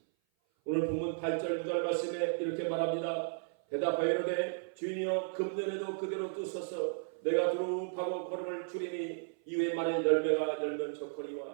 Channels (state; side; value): silent; left; 55 dB below the other